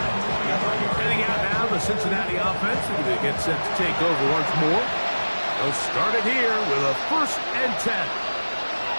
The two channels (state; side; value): inverted; both; correlation -1.00